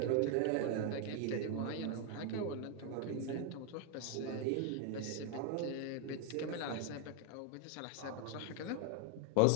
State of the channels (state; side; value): different; both; correlation 0.01